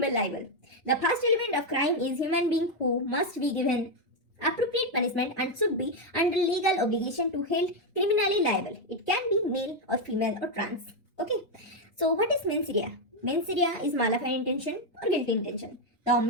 liable. The first element of crime is human being who must be given appropriate punishment and should be under legal obligation to held criminally liable. It can be male or female or trans. Okay. So what is mens rea? Mens rea is malevolent intention or guilty intention. The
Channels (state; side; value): normal; both; correlation 0.03